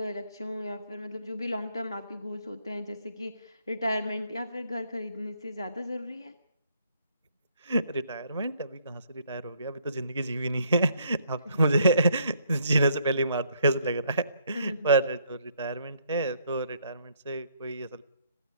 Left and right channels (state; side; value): inverted; both; correlation -0.68